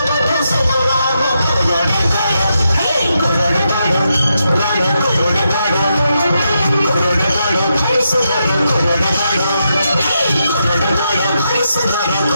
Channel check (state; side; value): inverted; both; correlation -0.84